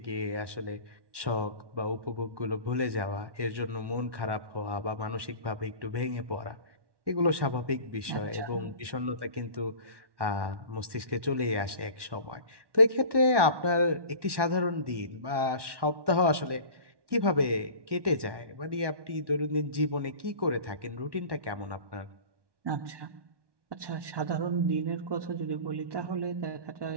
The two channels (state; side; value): late; left; 1.1 ms